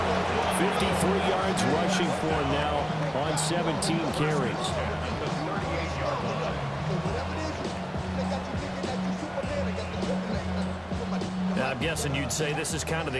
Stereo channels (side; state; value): both; identical; correlation 1.00